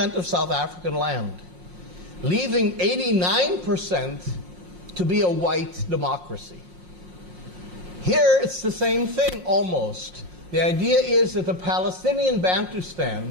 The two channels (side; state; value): left; late; 5.6 ms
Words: of South African land, leaving 89% to be a white democracy. Here it's the same thing almost. The idea is that the Palestinian Bantustan,